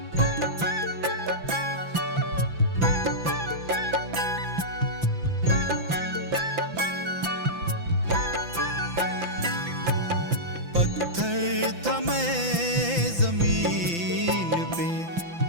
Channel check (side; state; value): left; late; 5.9 ms